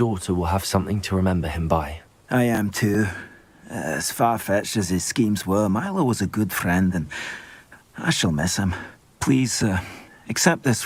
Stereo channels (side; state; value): both; identical; correlation 1.00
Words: will have something to remember him by. I am too. As far-fetched as his schemes were, Milo was a good friend, and I shall miss him. Please, accept